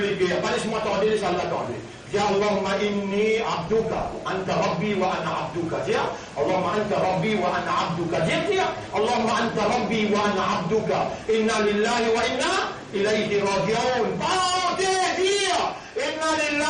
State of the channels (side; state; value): both; identical; correlation 1.00